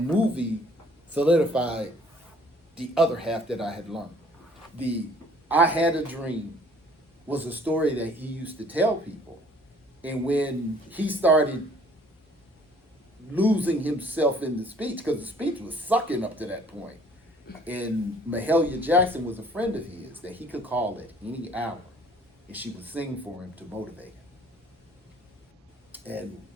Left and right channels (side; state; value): both; normal; correlation 0.56